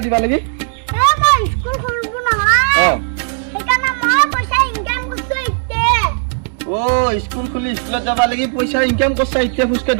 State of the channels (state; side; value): silent; left; digital silence